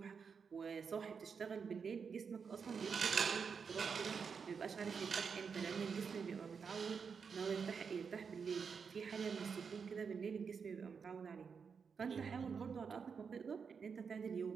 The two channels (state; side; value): quieter; left; 6.0 dB